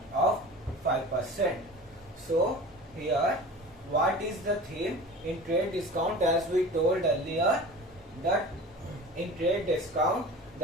of 5%. So here what is the theme in trade discount? As we told earlier that in trade discount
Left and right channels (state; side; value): normal; both; correlation 0.37